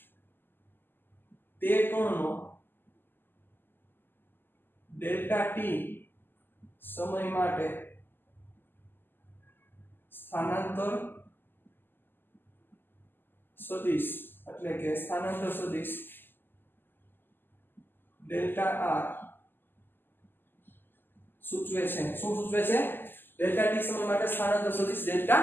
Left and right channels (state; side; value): late; right; 0.095 ms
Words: તે કોણનો ડેલ્ટા t સમય માટે સ્થાનાંતર સદિશ એટલે કે સ્થાનાંતર સદિશ ડેલ્ટા r સૂચવે છે શું સૂચવે છે ડેલ્ટા t સમય માટે સ્થાનાંતર સદિશ